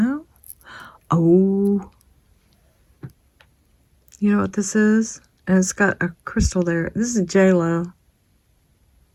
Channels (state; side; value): identical; both; correlation 1.00